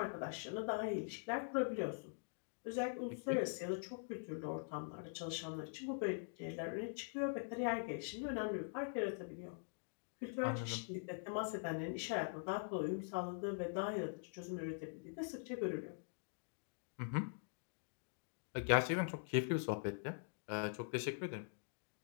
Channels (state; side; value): silent; right; digital silence